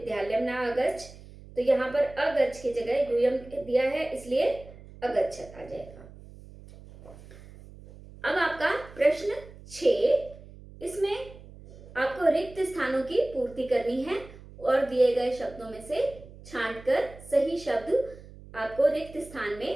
न अगच्छ, तो यहाँ पर अगच्छ की जगह यूयम दिया है इसलिए अगच्छत आ जाएगा। अब आपका प्रश्न 6, इसमें आपको रिक्त स्थानों की पूर्ति करनी है और दिए गए शब्दों में से छांटकर सही शब्द आपको रिक्त स्थान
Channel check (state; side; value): noise; right; hum, 19 dB below the sound